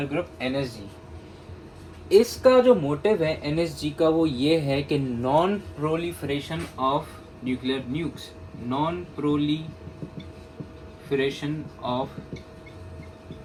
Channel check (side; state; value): both; identical; correlation 1.00